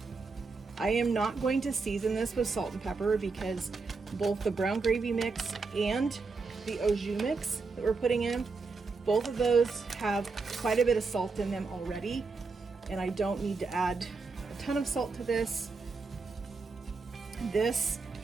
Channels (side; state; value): left; quieter; 4.3 dB